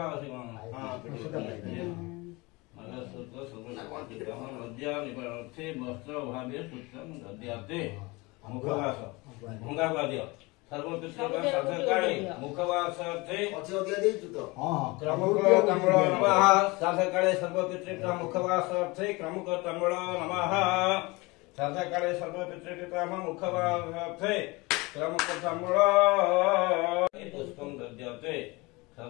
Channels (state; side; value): quieter; right; 24.4 dB